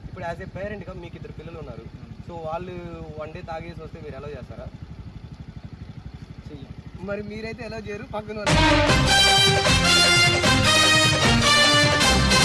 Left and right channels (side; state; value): both; identical; correlation 1.00